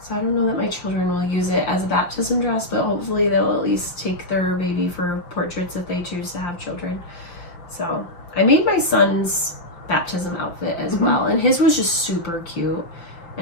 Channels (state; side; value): late; right; 5.9 ms